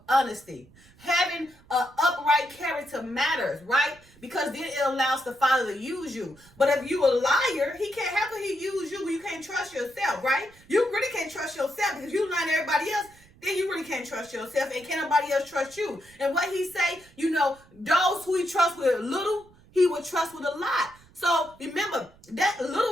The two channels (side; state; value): right; noise; rumble, 27 dB below the sound